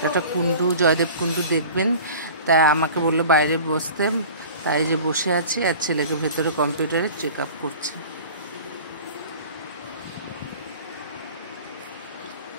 একটা কুণ্ডু, জয়দেব কুণ্ডু দেখবেন, তাই আমাকে বললো বাইরে বসতে, তাই যে বসে আছি। আর ছেলেকে ভেতরে কম্পিউটারে চেক আপ করছি।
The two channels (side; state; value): both; inverted; correlation -0.41